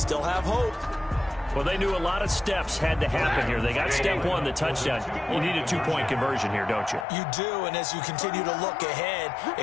have hope. Well, they knew a lot of steps had to happen here. They got step 1, the touchdown. You need a 2-point conversion here, don't you? You do, and as you continue to look ahead,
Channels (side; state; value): right; drops out; at 7.1 s